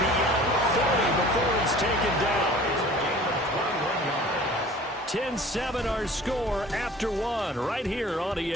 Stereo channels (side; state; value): both; normal; correlation 0.46